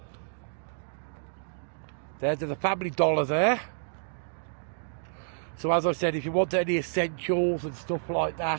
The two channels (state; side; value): silent; left; digital silence